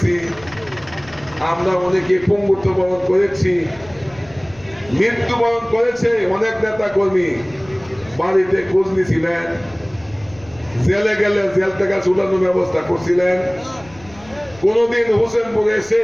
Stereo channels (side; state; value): left; noise; rumble, 23 dB below the sound